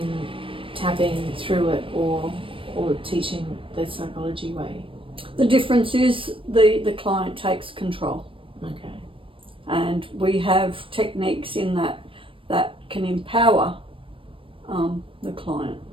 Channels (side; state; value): left; late; 0.25 ms